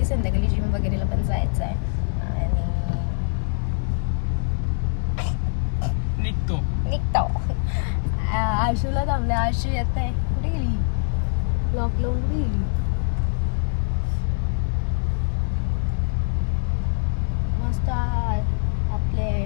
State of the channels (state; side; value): silent; right; digital silence